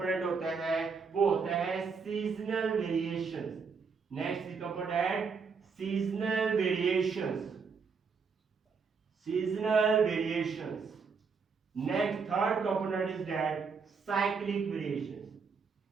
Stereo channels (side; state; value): left; quieter; 5.4 dB